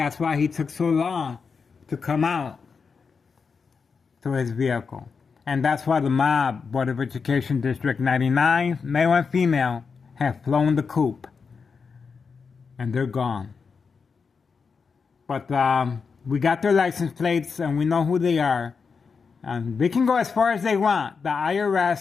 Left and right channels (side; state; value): right; quieter; 5.4 dB